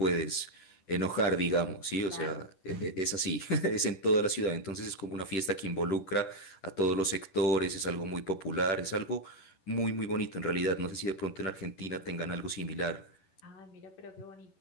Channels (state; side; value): late; right; 10 ms